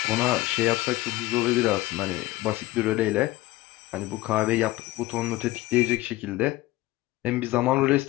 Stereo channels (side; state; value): right; quieter; 18.2 dB